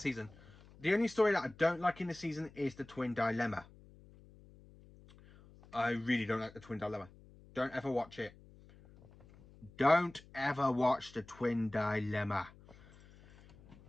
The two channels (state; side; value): noise; left; hum, 23 dB below the sound